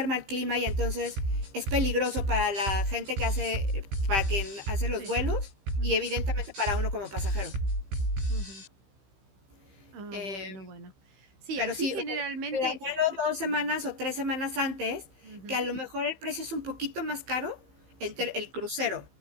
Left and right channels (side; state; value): left; late; 15 ms